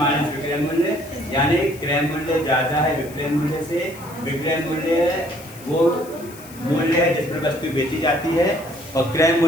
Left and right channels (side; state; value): left; noise; hiss, 19 dB below the sound